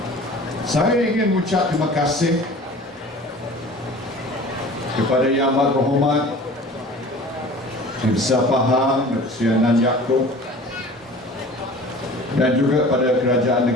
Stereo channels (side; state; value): both; normal; correlation 0.43